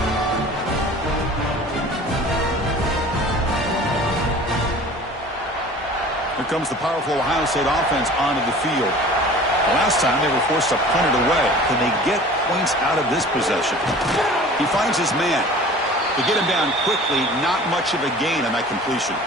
Here comes the powerful Ohio State offense onto the field. The last time they were forced to punt it away. Can they get points out of this possession? He finds his man. To get him down quickly, not much of a gain on that completion.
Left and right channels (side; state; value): both; normal; correlation 0.44